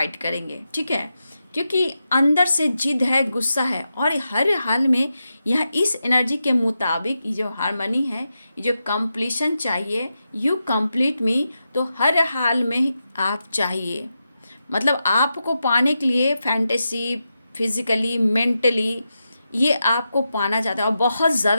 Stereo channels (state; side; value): inverted; both; correlation -0.88